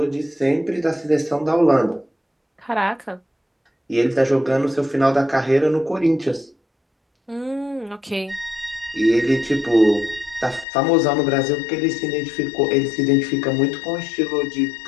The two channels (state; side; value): drops out; right; at 10.7 s